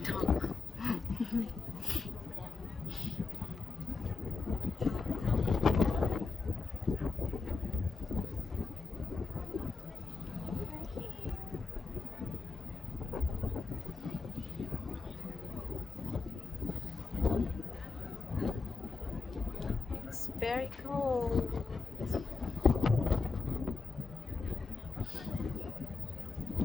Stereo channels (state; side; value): quieter; right; 4.4 dB